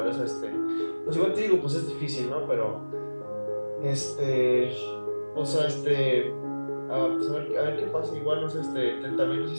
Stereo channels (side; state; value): both; inverted; correlation -1.00